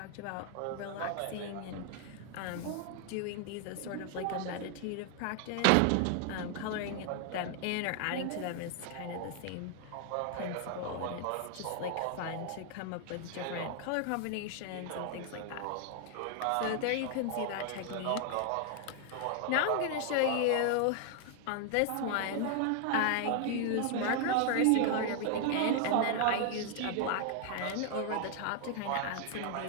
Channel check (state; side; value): different; both; correlation 0.00